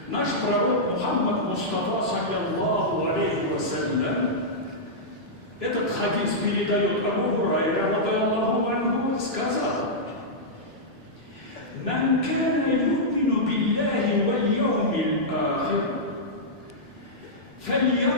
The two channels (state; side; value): normal; both; correlation -0.10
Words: наш пророк Мухаммад Мустафа, саллаллаху алейхи вассалям, этот хадис передает Абу Хурайра, радиаллаху анху, сказал: «Ман кана ю'мину биллахи валь яумил ахир,